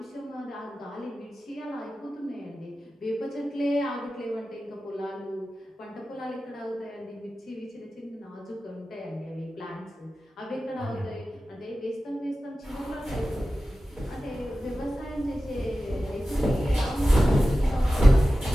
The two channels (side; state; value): both; normal; correlation 0.94